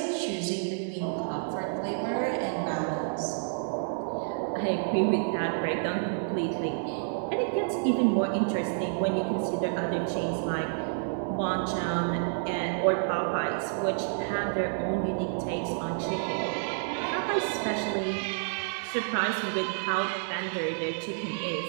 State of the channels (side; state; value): left; silent; digital silence